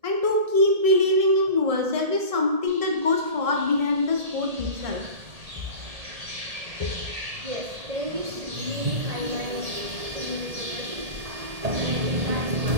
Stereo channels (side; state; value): left; late; 1.8 ms